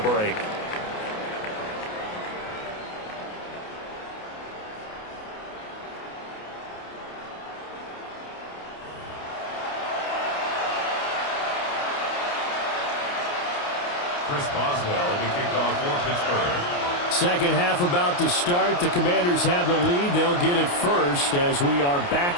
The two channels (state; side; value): late; right; 28 ms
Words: Chris Boswell will be kicked off for Pittsburgh. Second half about to start. The Commanders have the lead. They'll get it first as we are back